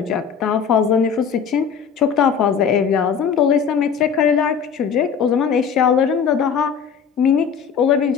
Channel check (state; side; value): quieter; right; 6.9 dB